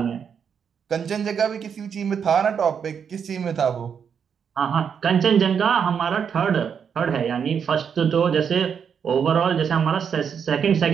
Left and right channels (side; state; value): left; quieter; 7.2 dB